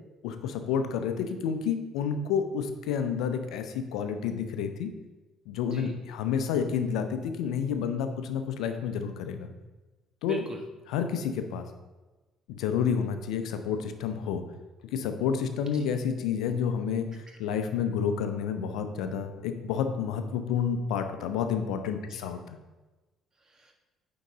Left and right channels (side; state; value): right; quieter; 6.8 dB